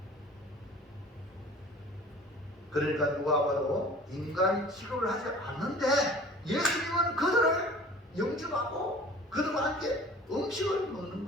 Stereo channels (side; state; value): both; normal; correlation 0.45